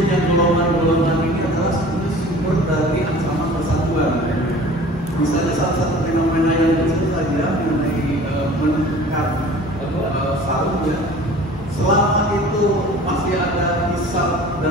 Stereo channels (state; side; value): normal; both; correlation 0.44